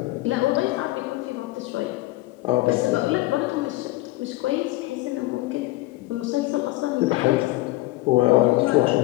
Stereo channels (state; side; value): quieter; right; 18.9 dB